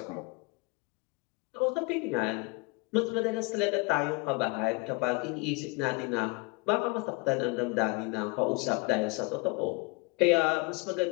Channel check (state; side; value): quieter; right; 27.5 dB